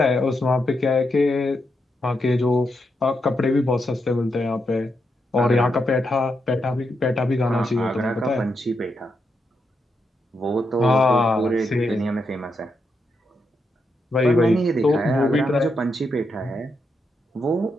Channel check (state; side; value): normal; both; correlation 0.82